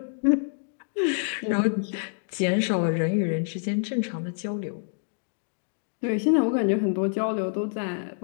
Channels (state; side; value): silent; right; digital silence